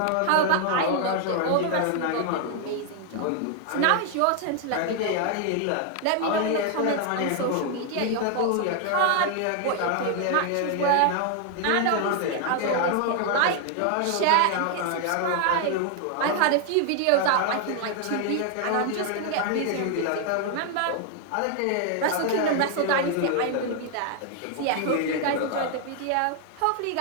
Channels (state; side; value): different; both; correlation 0.00